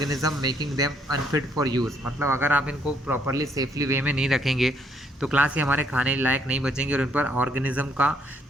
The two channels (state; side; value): normal; both; correlation 0.69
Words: making them unfit for use. मतलब अगर आप इनको प्रॉपरली सेफली वे में नहीं रखेंगे तो क्लास ये हमारे खाने लायक नहीं बचेंगे और इन पर ऑर्गेनिज्म का